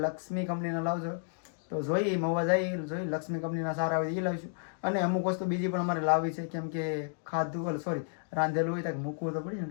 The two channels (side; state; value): right; silent; digital silence